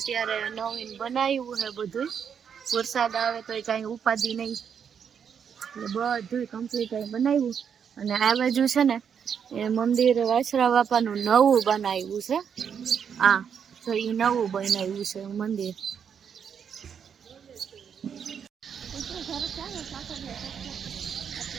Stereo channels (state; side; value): quieter; left; 7.5 dB